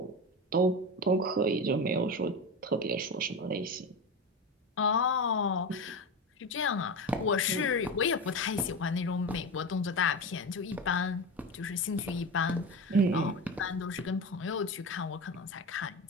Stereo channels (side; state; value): both; normal; correlation 0.23